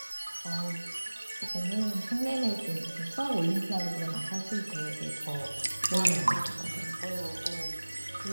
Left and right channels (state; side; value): inverted; both; correlation -1.00